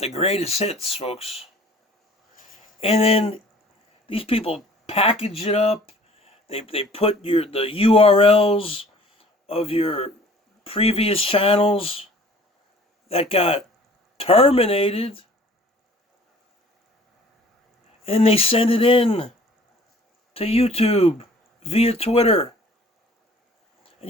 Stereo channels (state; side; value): normal; both; correlation 0.51